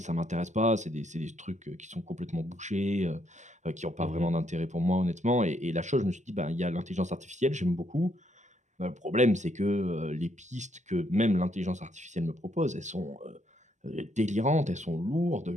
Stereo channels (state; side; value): late; left; 0.34 ms